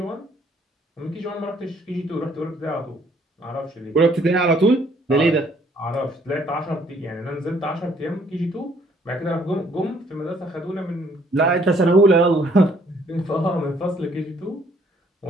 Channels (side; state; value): both; normal; correlation 0.64